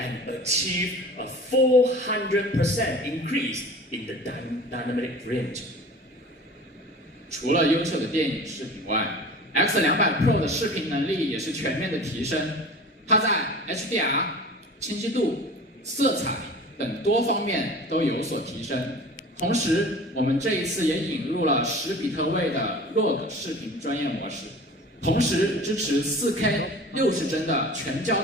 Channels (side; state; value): both; normal; correlation 0.40